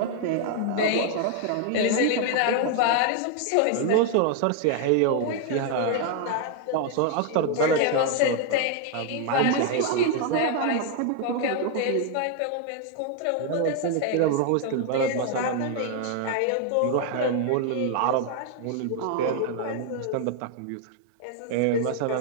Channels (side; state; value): both; different; correlation 0.00